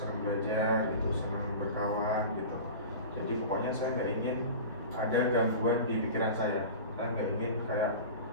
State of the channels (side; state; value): both; inverted; correlation -0.33